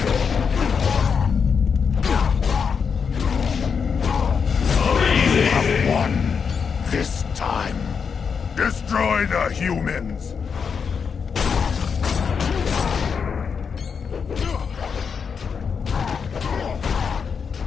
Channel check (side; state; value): right; quieter; 6.2 dB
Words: This time, destroy the humans!